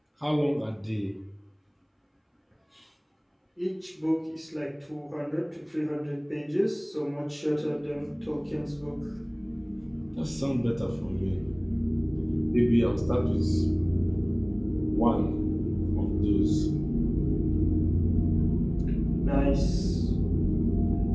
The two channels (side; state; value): both; identical; correlation 1.00